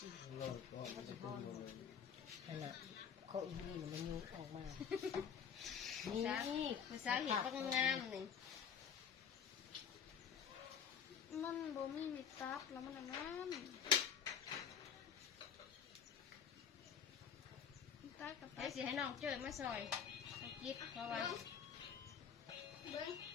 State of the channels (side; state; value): right; quieter; 7.5 dB